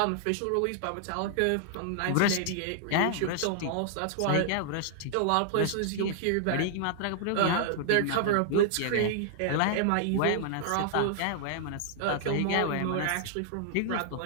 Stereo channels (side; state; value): both; different; correlation -0.01